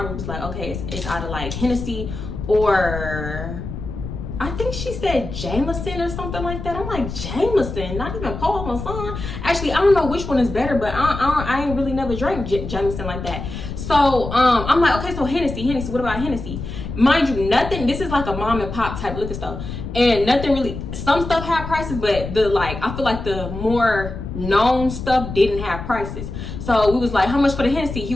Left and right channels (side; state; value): left; noise; rumble, 8 dB below the sound